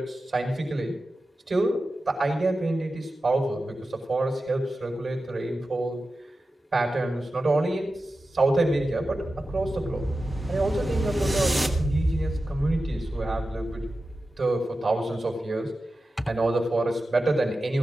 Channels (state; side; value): normal; both; correlation 0.93